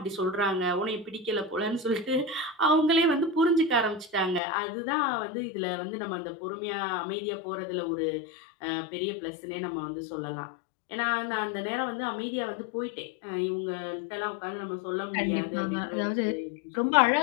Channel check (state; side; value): drops out; right; at 4.4 s